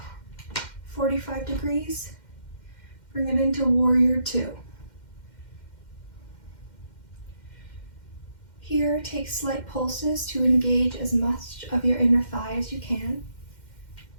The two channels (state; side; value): late; right; 2.1 ms